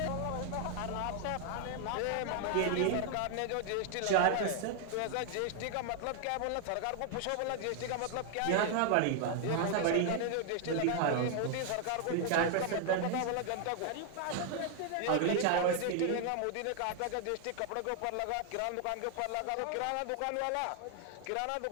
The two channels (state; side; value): different; both; correlation 0.00